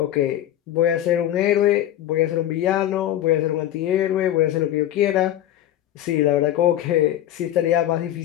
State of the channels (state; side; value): quieter; right; 12.3 dB